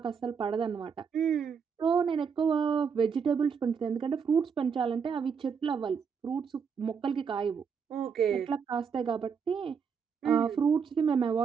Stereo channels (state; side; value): quieter; left; 6.4 dB